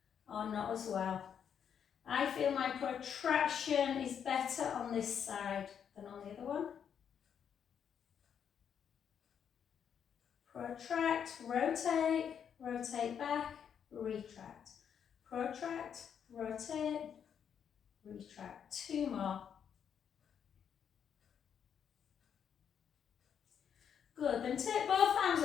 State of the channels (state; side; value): quieter; right; 8.0 dB